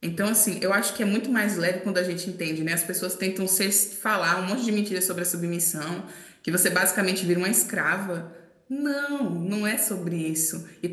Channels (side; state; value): both; identical; correlation 1.00